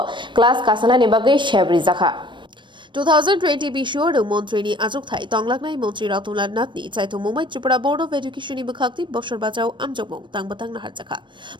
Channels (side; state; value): left; late; 0.23 ms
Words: class kasana ni bagai Chengjakha 2020 বিশ্বর মন্ত্রী আজক থাই তংলাকনাই মন্ত্রী রতনলাল নাতনি চাইতো Mumbai Tripura board of education নি বখাক্তি বছর বাঁচাও আমজক মং তাংবাতাং নাহার জাখা